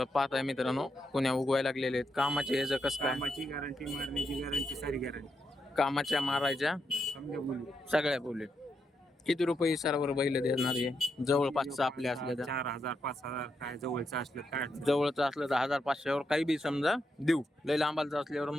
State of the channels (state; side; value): normal; both; correlation 0.83